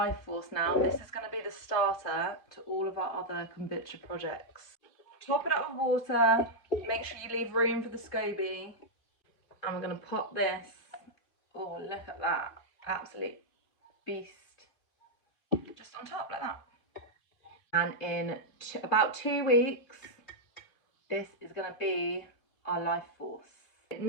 force now. This is going to be the starter to all of our other kombucha projects. Top it up with water, make sure you leave room for the scoby, and we're going to pop this. Oh, look at that, absolute beast. Just on top like that. And in about 2 weeks, this is going to be our life force.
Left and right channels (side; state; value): right; late; 3.7 ms